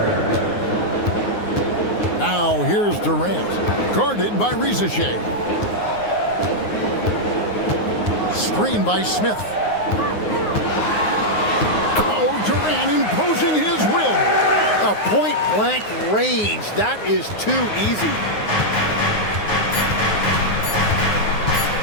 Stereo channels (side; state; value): right; late; 9.6 ms